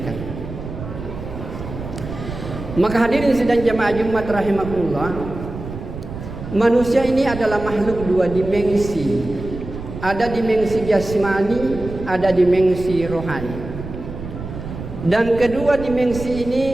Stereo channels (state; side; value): noise; right; rumble, 10 dB below the sound